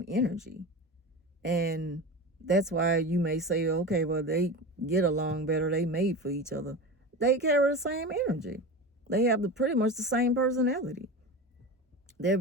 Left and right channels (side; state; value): both; normal; correlation 0.27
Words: energy. And that's why you may say, okay, well, they get along better. They made for each other. They carry the same energy. They have pretty much the same personality. They're